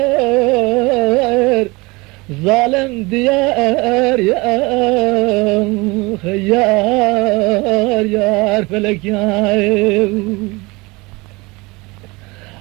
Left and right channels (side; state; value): left; quieter; 24.4 dB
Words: ظالم ديار يار يار فلك يار